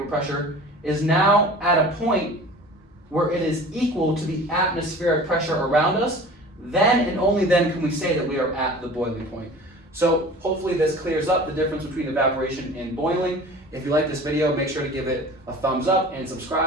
pressure, is now at a point where it is equal to the atmospheric pressure around us, then and only then can we say that we are at the boiling point. So hopefully this clears up the difference between evaporation and boiling. If you like this video, make sure to give it a thumbs up and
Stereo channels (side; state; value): both; normal; correlation 0.41